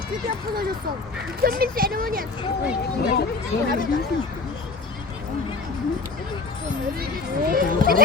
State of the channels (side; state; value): right; quieter; 3.9 dB